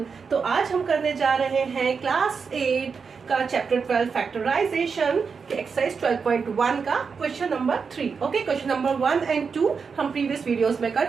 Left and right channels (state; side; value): quieter; left; 5.6 dB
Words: तो आज हम करने जा रहे हैं क्लास 8 का चैप्टर 12 फैक्टराइजेशन के एक्सरसाइज 12.1 का question number 3। Okay, question number 1 and 2 हम प्रीवियस वीडियोस में